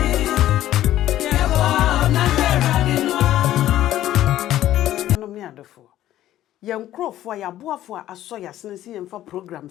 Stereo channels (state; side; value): quieter; right; 13.2 dB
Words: Yankrofo ya boafo aso ya senesi yemfa program